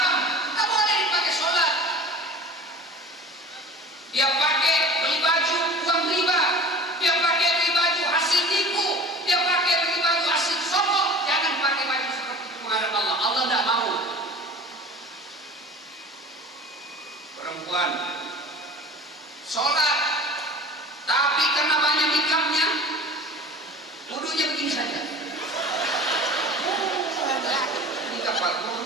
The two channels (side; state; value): both; normal; correlation 0.39